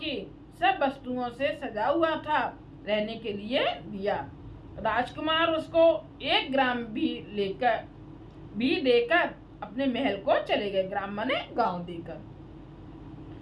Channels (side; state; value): both; identical; correlation 1.00